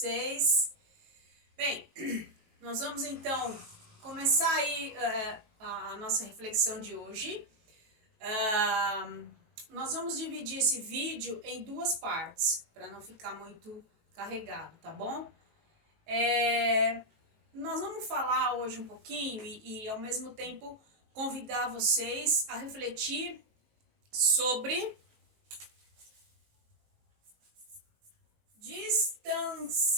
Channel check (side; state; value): left; late; 18 ms